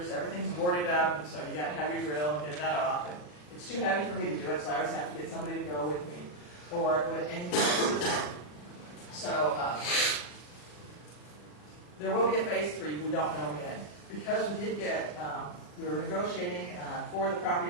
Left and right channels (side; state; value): right; late; 40 ms